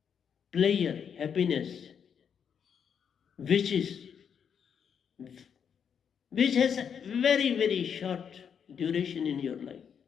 pleasure, happiness, which is which has a very, very short duration in your life,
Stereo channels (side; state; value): right; quieter; 7.5 dB